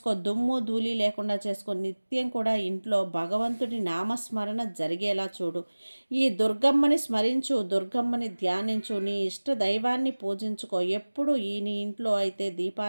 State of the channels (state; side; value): inverted; both; correlation -1.00